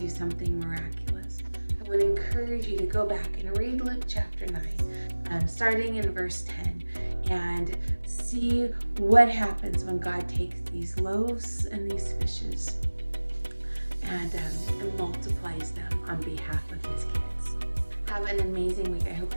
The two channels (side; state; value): both; inverted; correlation -1.00